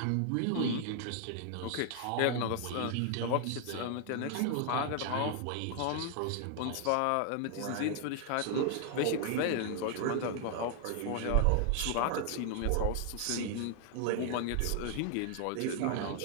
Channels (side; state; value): both; different; correlation 0.00